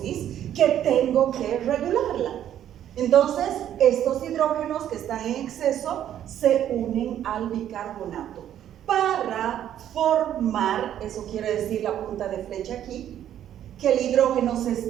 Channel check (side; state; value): left; quieter; 10.8 dB